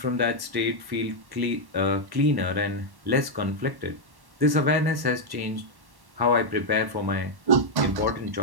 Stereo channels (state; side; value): late; left; 1.1 ms